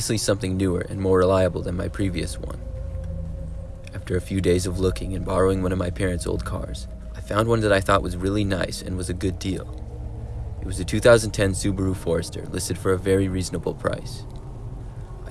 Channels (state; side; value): identical; both; correlation 1.00